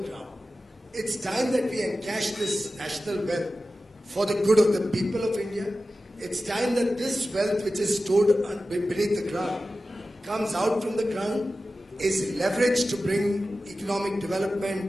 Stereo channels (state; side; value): normal; both; correlation 0.94